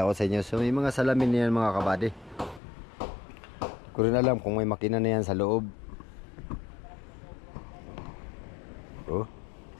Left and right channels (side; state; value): right; drops out; at 2.6 s